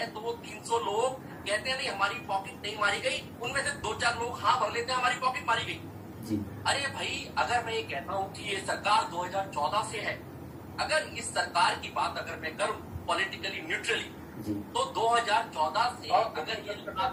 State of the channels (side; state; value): both; identical; correlation 1.00